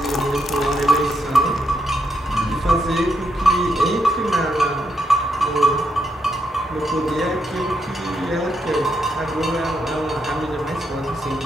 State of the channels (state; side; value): normal; both; correlation 0.79